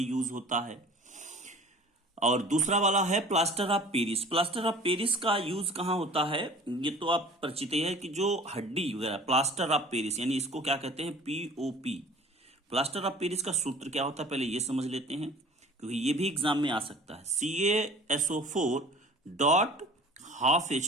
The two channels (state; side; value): normal; both; correlation 0.46